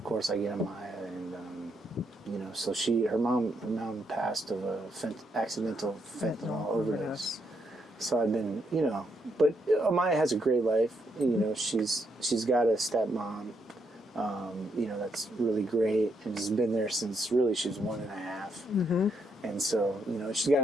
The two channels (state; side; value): normal; both; correlation 0.77